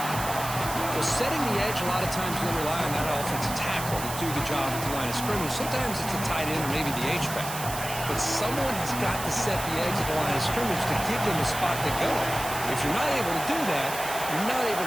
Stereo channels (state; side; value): noise; right; hiss, 8 dB below the sound